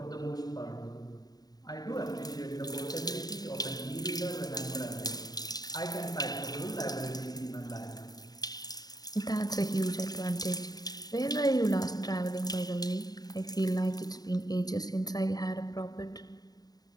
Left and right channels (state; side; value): late; right; 0.19 ms